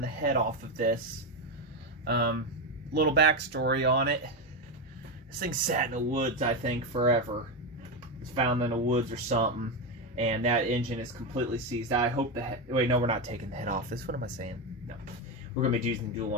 the head off of this. Little backstory on it. This thing sat in the woods, I think, forever. It was found in the woods or something, and that engine is completely seized. I hope the head... Wait, no, we're not taking the head off this. What am I saying? No. We're going to be using the dual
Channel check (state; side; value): normal; both; correlation 0.11